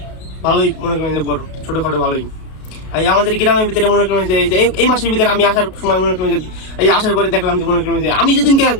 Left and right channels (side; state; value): right; late; 33 ms